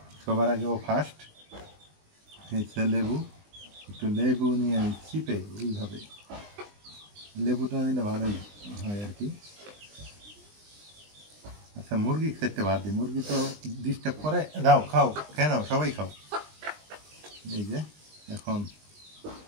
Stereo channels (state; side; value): late; left; 20 ms